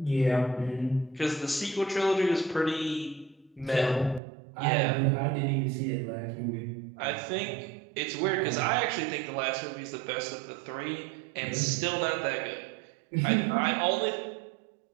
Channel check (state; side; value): drops out; left; at 4.2 s